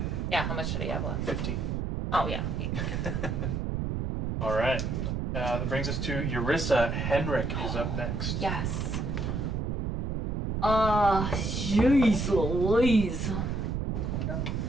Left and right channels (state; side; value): noise; right; rumble, 1 dB below the sound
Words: Yeah, how much did he have left? 15. Oh, yeah. All right. That brings us to Eurissa. Henrik is up next. Yes. Jeez Louise.